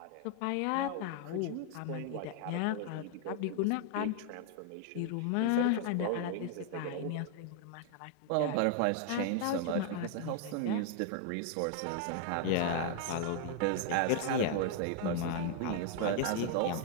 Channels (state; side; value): different; both; correlation 0.00